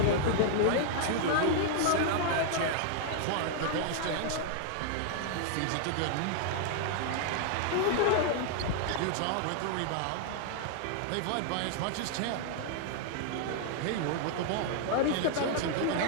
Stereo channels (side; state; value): both; different; correlation 0.00